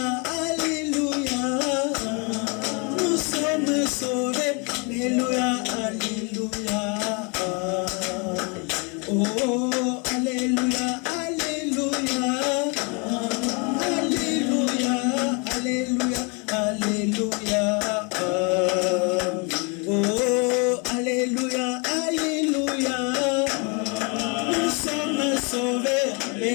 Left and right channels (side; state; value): right; quieter; 32.5 dB